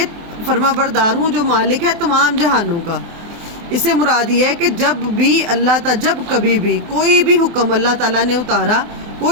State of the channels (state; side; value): late; left; 24 ms